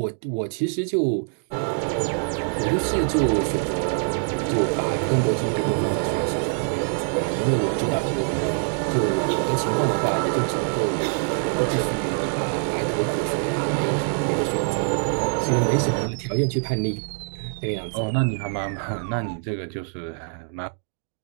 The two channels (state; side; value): silent; left; 62 dB below the other